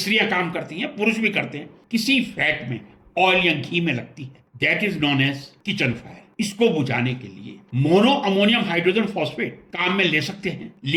काम करती हैं, पुरुष भी करते हैं, किसी फैट में, ऑयल या घी में लगती है, that is known as kitchen fire. इसको बुझाने के लिए मोनो अमोनियम हाइड्रोजन फॉस्फेट काम में ले सकते हैं,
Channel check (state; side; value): identical; both; correlation 1.00